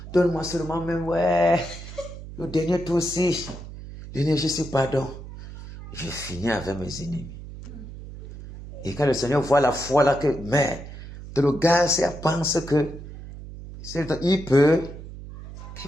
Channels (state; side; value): noise; right; hum, 13 dB below the sound